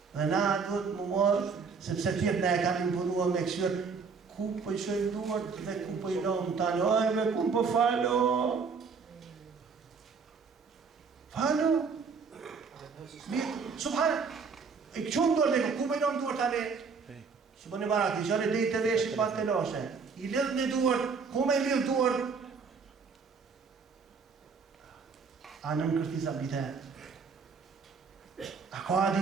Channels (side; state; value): left; quieter; 5.3 dB